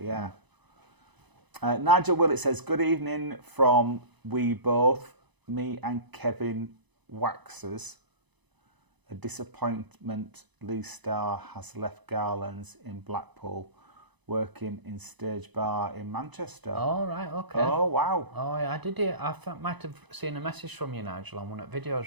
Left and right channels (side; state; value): left; late; 1.0 ms